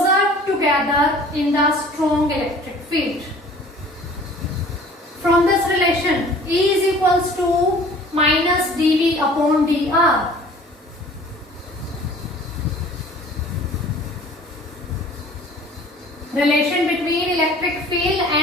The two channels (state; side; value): normal; both; correlation 0.49